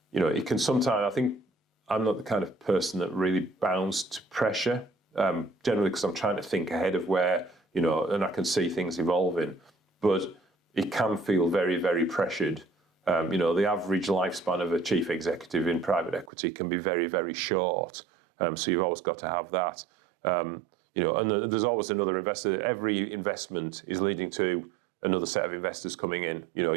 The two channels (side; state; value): left; drops out; at 16.3 s